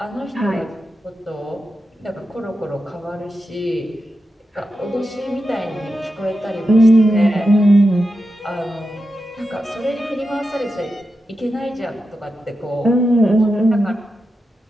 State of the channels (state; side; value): normal; both; correlation 0.89